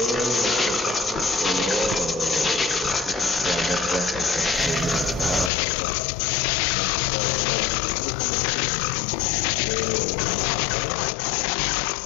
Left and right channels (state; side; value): drops out; right; at 5.5 s